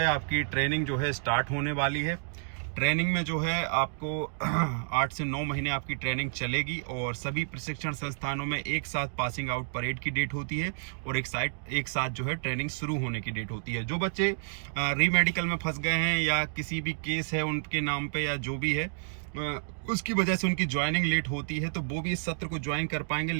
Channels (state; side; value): silent; left; digital silence